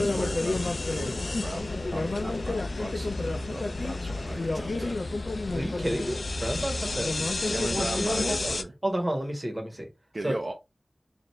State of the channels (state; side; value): normal; both; correlation 0.97